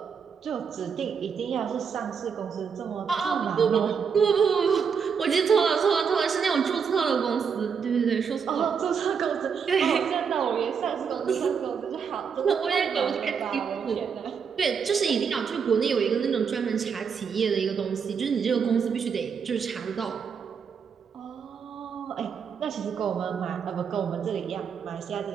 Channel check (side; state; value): left; quieter; 6.4 dB